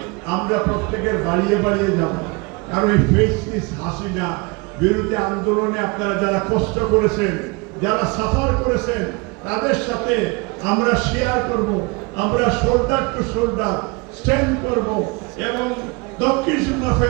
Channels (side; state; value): left; quieter; 27.8 dB